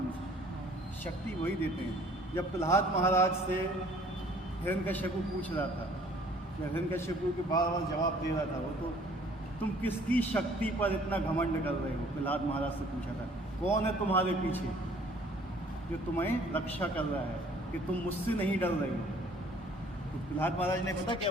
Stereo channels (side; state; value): both; normal; correlation 0.56